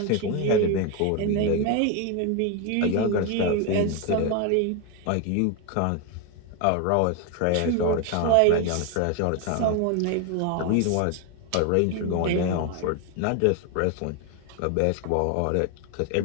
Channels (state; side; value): different; both; correlation 0.02